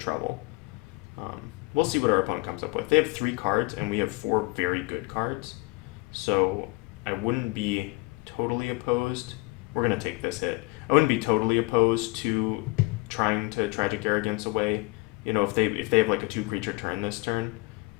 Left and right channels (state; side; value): quieter; right; 25.4 dB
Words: We'll see what our opponent comes up with. They have 3 cards, and we have 4 very good cards, so I wouldn't be totally opposed. We're going to take this hit. I wouldn't be totally opposed to trying to Tragic Arrogance away. If they have like a 2-creature turn this turn,